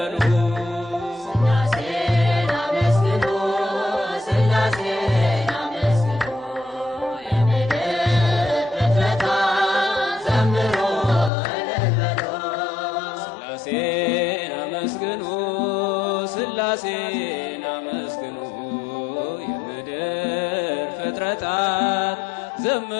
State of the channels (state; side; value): drops out; right; at 11.3 s